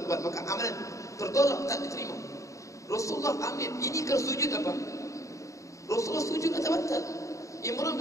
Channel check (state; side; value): late; right; 0.15 ms